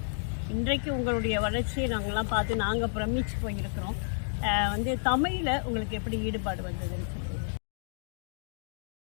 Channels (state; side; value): silent; right; digital silence